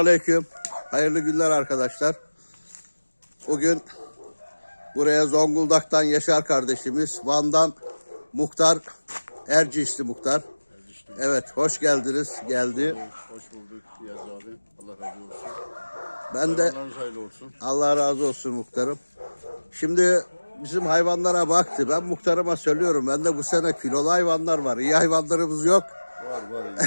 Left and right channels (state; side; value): inverted; both; correlation -1.00